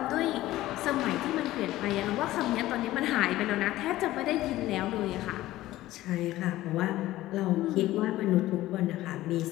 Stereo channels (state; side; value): quieter; right; 15.9 dB